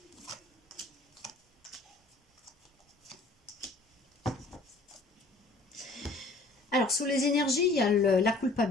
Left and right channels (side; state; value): right; quieter; 3.2 dB